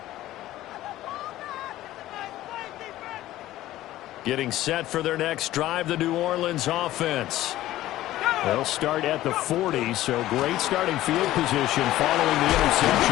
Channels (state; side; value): quieter; right; 15.0 dB